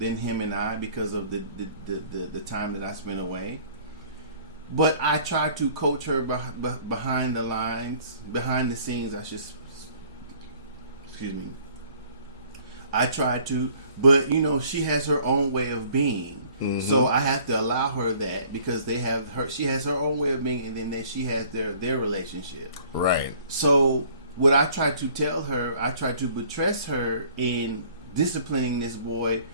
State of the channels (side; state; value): both; inverted; correlation -0.55